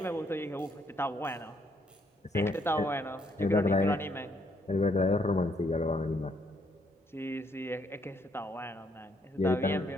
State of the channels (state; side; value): normal; both; correlation 0.71